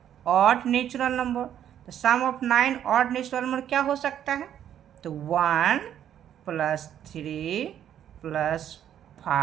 ऑड नेचुरल नंबर, तो सम ऑफ 9 ऑड नेचुरल नंबर क्या हो सकता है, तो 1 + 3 +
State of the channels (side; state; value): left; quieter; 10.2 dB